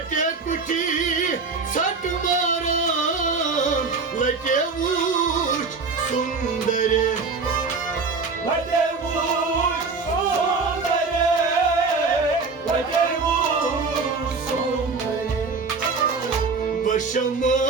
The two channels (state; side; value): quieter; left; 4.4 dB